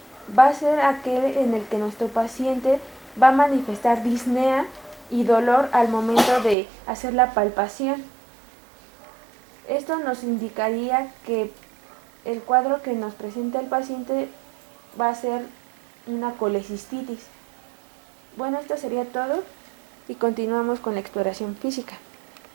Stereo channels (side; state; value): left; drops out; at 6.6 s